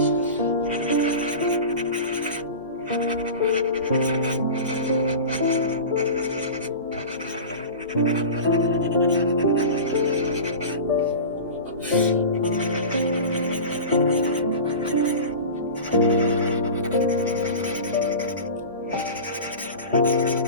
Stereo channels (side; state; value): both; inverted; correlation -0.31